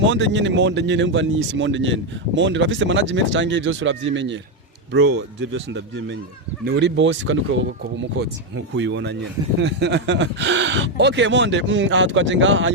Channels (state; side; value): normal; both; correlation 0.05